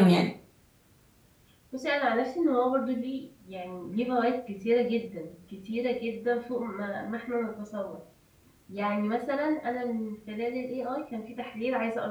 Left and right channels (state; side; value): identical; both; correlation 1.00